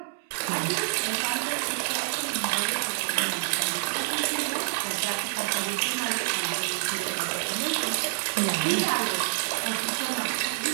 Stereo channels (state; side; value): silent; left; 60 dB below the other